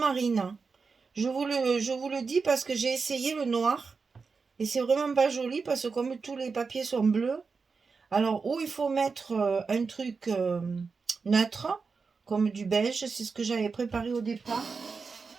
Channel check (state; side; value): quieter; left; 4.8 dB